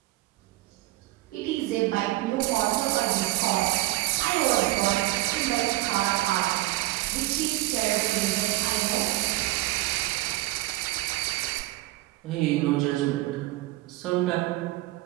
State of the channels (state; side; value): quieter; left; 18.4 dB